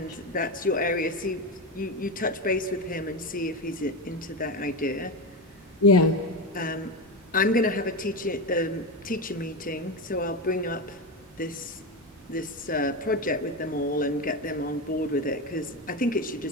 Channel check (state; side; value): normal; both; correlation 0.17